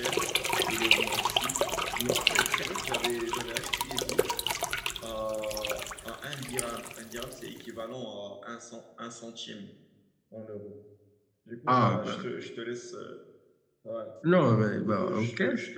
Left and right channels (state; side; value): identical; both; correlation 1.00